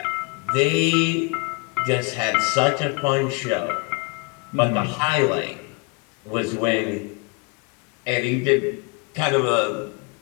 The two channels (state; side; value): quieter; right; 29.8 dB